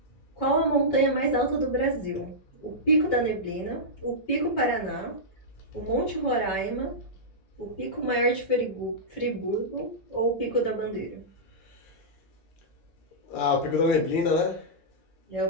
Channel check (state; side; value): late; right; 7.7 ms